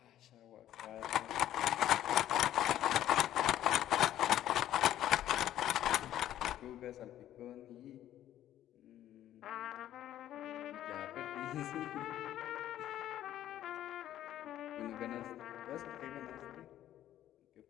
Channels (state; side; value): quieter; right; 12.3 dB